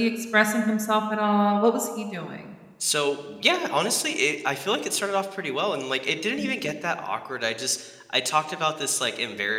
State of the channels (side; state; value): both; identical; correlation 1.00